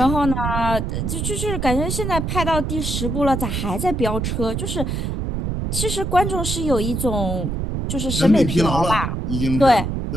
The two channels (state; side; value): noise; right; rumble, 2 dB below the sound